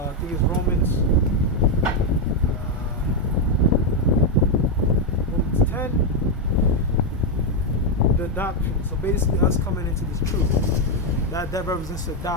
think it's Romans 10. The adoption. So basically us coming into this truth. That represents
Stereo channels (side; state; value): both; normal; correlation 0.03